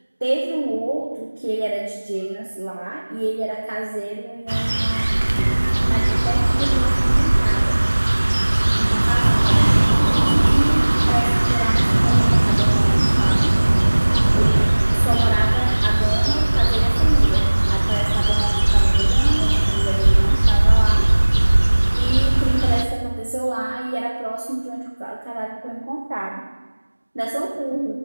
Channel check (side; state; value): both; inverted; correlation -1.00